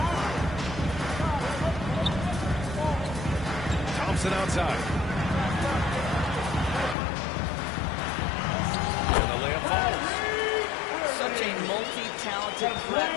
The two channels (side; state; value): right; drops out; at 7.0 s